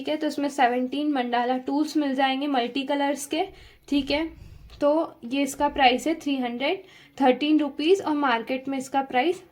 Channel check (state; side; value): identical; both; correlation 1.00